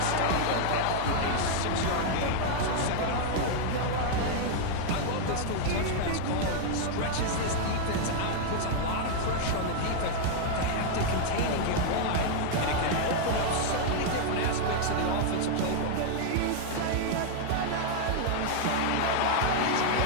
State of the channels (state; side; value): different; both; correlation -0.01